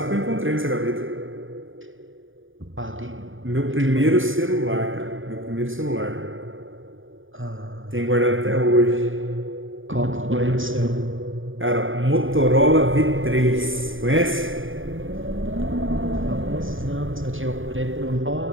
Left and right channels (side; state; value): left; late; 0.58 ms